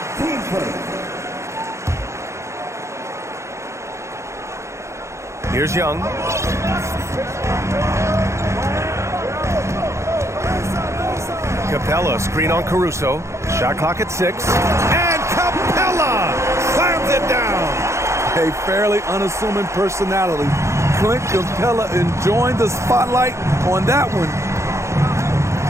Here's Young. Capella, screen on Caruso. Shot clock at 6. And Capella slams it down. A fairly unassuming personality. Clint Capella enjoying the spotlight on that one.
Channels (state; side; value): late; left; 0.14 ms